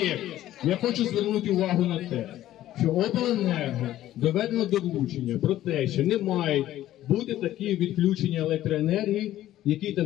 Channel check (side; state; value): right; quieter; 13.6 dB